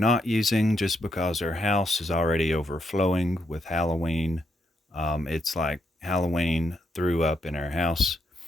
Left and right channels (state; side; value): normal; both; correlation 0.79